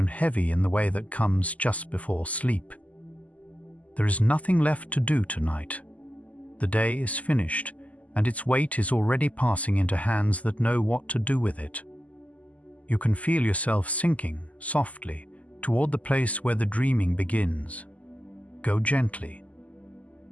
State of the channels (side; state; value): right; late; 0.073 ms